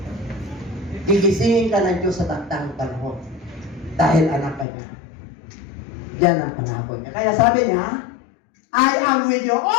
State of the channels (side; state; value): right; drops out; at 4.7 s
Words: Gigisingin ka ng Diyos sa taktang panahon. Dahil anak ka niya. Yan ang pangako niya. Kaya sabi niya, I am with you